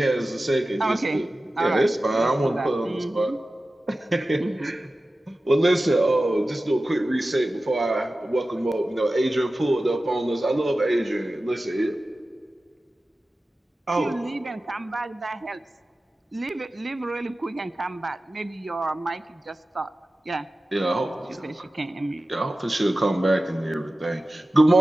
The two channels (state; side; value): normal; both; correlation 0.95